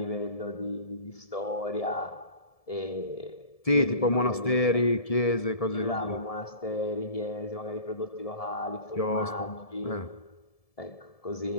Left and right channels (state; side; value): late; right; 1.7 ms